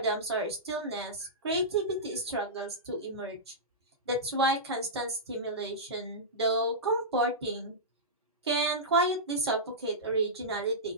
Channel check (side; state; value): both; normal; correlation -0.14